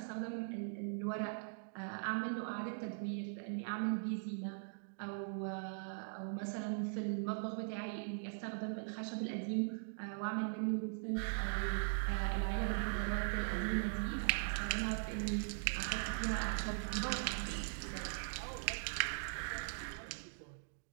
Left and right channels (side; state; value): left; silent; digital silence